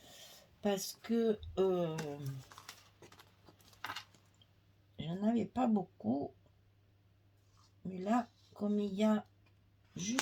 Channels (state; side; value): identical; both; correlation 1.00